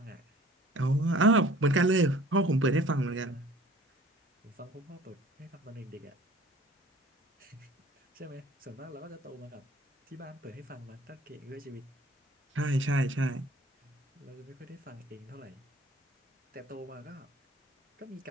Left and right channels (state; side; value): normal; both; correlation 0.49